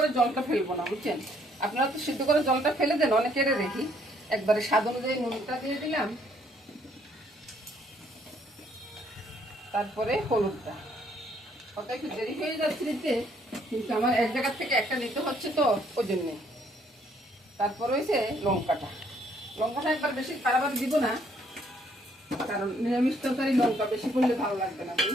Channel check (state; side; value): normal; both; correlation 0.66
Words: জলটা ফেলবো না, বুঝছেন? আপনারা তো সিদ্ধ করে জলটা ফেলে দেন, অনেকের দেখি। একবারে স্বাদ অনুযায়ী নুনটা দিয়ে দিলাম, তারপরে হলুদটা। কত একটু দেরি হয়ে যাচ্ছে নিতে, কিন্তু আমার এক জায়গার থেকে একটা নিতে হচ্ছে তো ওই জন্যে। তারপর হয়েছে লঙ্কাটা। লঙ্কাটা একবার বেশি বারবার দিব না, কারণ নিরামিষ তরকারি লঙ্কা বেশি করলে ভালো লাগবে না।